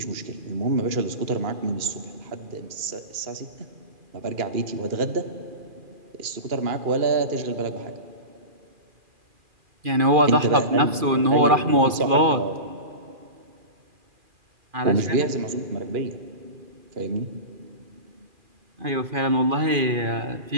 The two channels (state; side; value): late; left; 2.4 ms